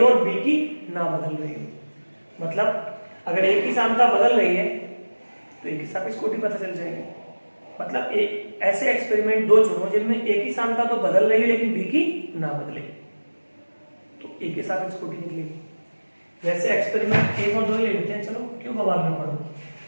और b की ना बदल रही हो। मतलब अगर a की सांद्रता बदल रही है तो a की सापेक्ष कोटि पता चल जाएगी। मतलब ऐसे एक्सपेरिमेंट दो चुनो जिनमें a की सांद्रता तो बदल रही है लेकिन b की ना बदले, तो a के सापेक्ष कोटि निकलेगी। वैसे एक्सपेरिमेंट 1 और 2 ले लेते हैं, चलो क्यों बवाल में पढ़ो।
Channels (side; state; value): both; inverted; correlation -1.00